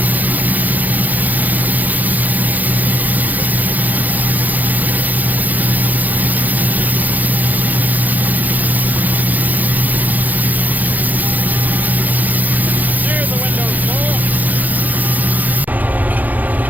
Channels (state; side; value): late; left; 0.082 ms